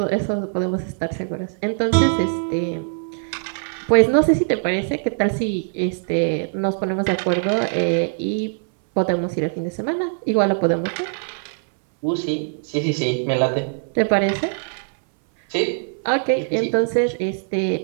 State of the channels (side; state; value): left; silent; 61 dB below the other